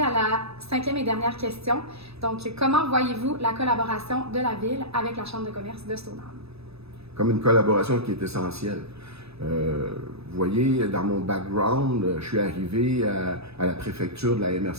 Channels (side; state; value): left; late; 0.78 ms